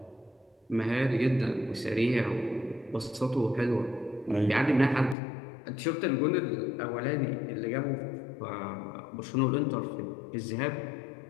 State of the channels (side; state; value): right; drops out; at 5.2 s